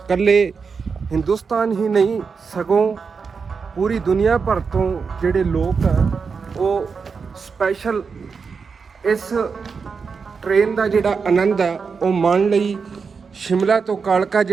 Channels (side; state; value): left; quieter; 5.4 dB